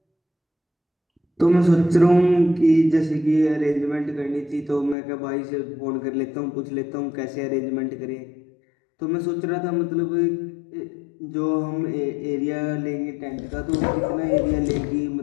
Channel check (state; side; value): drops out; right; at 5.0 s